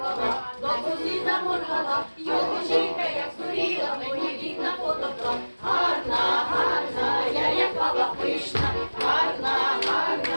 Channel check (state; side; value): inverted; both; correlation -1.00